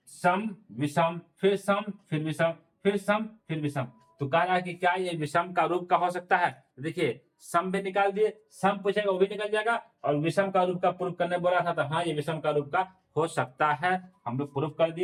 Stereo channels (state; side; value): identical; both; correlation 1.00